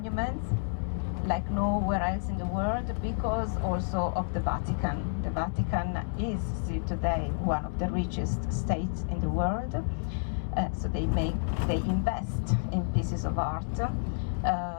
like nowhere else in the world, because also of the Vatican. The Vatican is still today one of the richest states in the world. So they invest in pieces of art,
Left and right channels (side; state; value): right; silent; 58 dB below the other